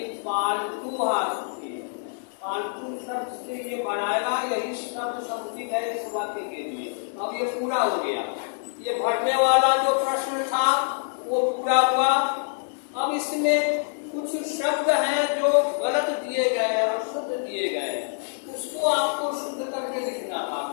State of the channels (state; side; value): silent; right; digital silence